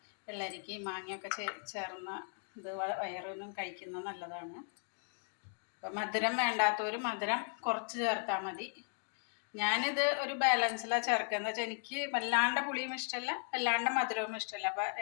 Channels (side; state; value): right; silent; 53 dB below the other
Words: വെള്ളരിക്ക മാങ്ങയൊക്കെ ചേർന്ന ഇത് വയറിനും കഴിക്കുന്നത് നല്ലതാണ്. അപ്പം മധുരം വേണ്ടാത്തവർ മധുരം കുറച്ച് ചേർത്താൽ മതി. ഞാനിത് ഒരു ബാലൻസിലാണ് ചേർക്കുക. എന്ന് വെച്ചാൽ എനിക്ക് വല്ലാണ്ട് പുളിയും ഇഷ്ടമല്ല, വല്ലാണ്ട് മധുരവും ഇഷ്ടമല്ല. അപ്പോൾ